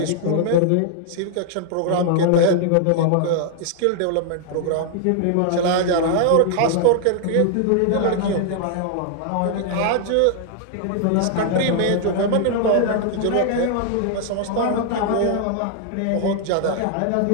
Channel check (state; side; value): different; both; correlation -0.01